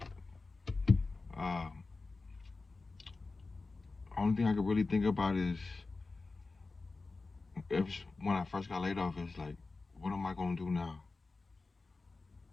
Uh, Only thing I could really think about is when I first got laid off is like, what am I gonna do now?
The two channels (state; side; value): quieter; right; 3.8 dB